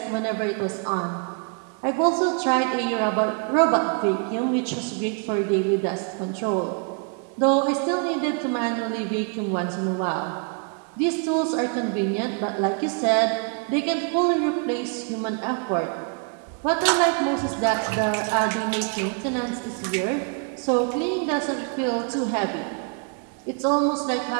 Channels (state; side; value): quieter; left; 39.2 dB